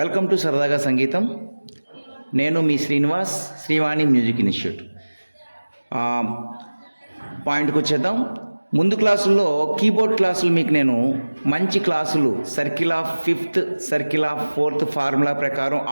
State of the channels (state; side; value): inverted; both; correlation -1.00